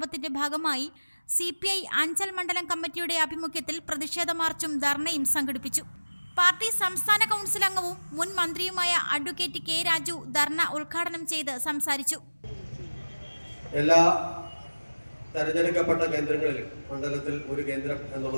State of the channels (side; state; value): both; inverted; correlation -1.00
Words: ഭാഗമായി CPI അഞ്ചൽ മണ്ഡലം കമ്മിറ്റിയുടെ ആഭിമുഖ്യത്തിൽ പ്രതിഷേധ മാർച്ചും ധർണയും സംഘടിപ്പിച്ചു. പാർട്ടി സംസ്ഥാന കൗൺസിൽ അംഗവും മുൻ മന്ത്രിയുമായ അഡ്വക്കേറ്റ് K. രാജു ധർണ ഉദ്ഘാടനം ചെയ്ത് സംസാരിച്ചു. എല്ലാ തെരഞ്ഞെടുക്കപ്പെട്ട കേന്ദ്രങ്ങളിലും മണ്ഡലത്തിൽ ഒരു കേന്ദ്രം